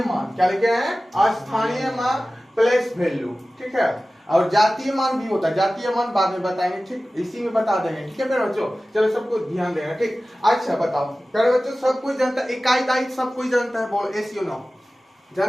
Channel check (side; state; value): both; normal; correlation 0.96